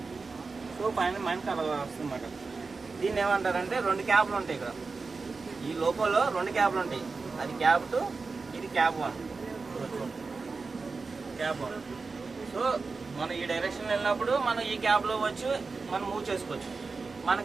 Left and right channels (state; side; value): quieter; left; 4.3 dB